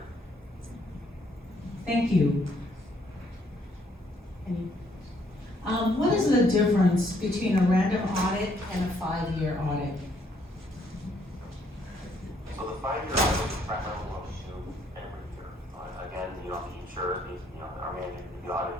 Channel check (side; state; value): both; normal; correlation 0.69